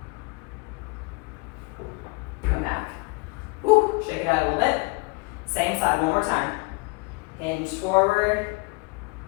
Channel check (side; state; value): right; quieter; 29.0 dB